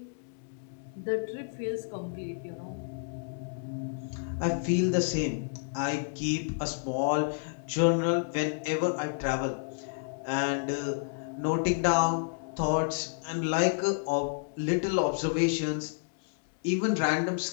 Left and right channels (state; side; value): silent; right; 58 dB below the other